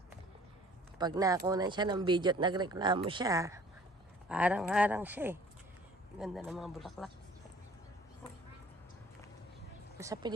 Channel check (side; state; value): both; normal; correlation 0.52